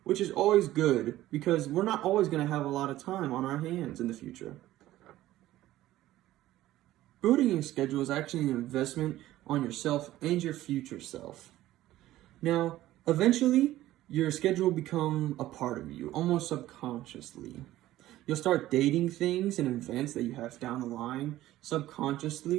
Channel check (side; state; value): left; quieter; 15.0 dB